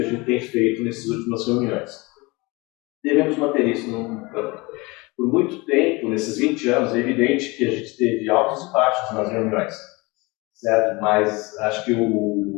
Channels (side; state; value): right; quieter; 24.7 dB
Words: a gente tem feito nessas últimas reuniões. Devemos manter isso por muito tempo, nesses 20 anos. É evidente que a gente teve altos e baixos nas reuniões, certo? Mas acho que